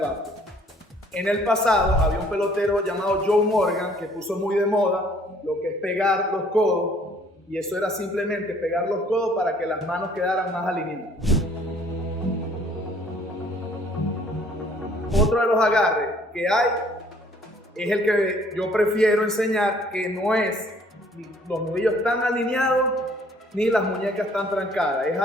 En el pasado había un pelotero llamado Joe Morgan que puso muy de moda lo que es pegar los codos, y eso era simplemente pegar los codos para que las manos quedaran más alineadas. Otro de los agarres que hay es el que yo prefiero enseñar, que no es ni los nudillos tan alineados ni las muñecas tan trancadas. Es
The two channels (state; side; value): normal; both; correlation 0.59